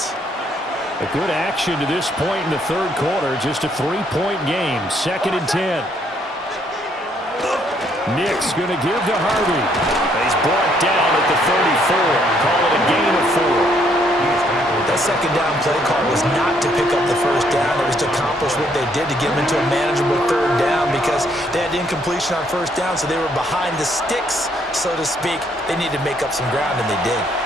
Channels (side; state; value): both; normal; correlation 0.69